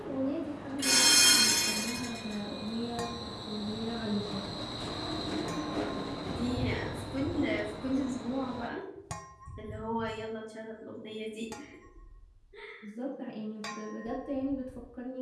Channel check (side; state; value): both; identical; correlation 1.00